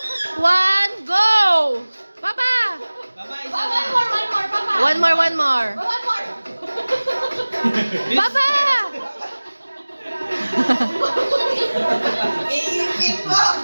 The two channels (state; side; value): inverted; both; correlation -1.00